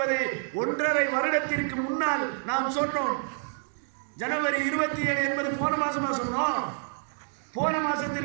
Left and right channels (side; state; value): left; silent; 59 dB below the other